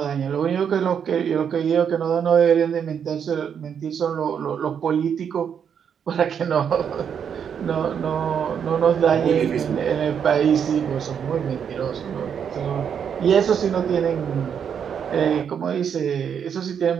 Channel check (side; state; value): left; quieter; 7.7 dB